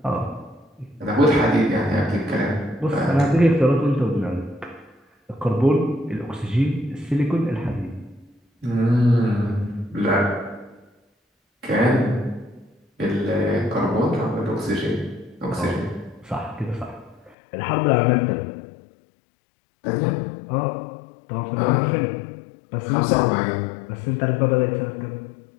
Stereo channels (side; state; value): right; drops out; at 17.4 s